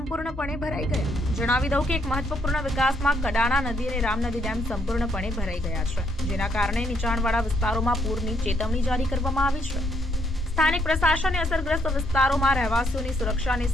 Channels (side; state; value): both; normal; correlation 0.72